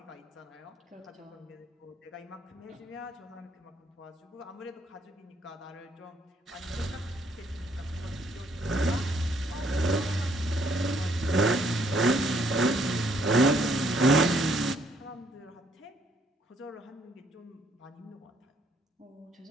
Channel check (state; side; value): normal; both; correlation 0.68